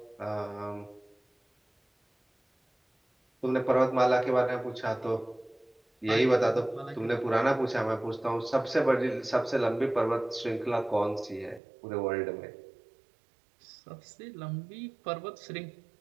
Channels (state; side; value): drops out; left; at 11.6 s